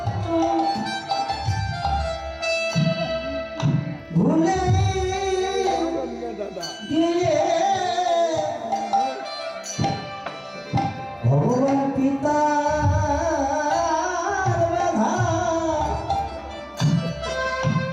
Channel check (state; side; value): identical; both; correlation 1.00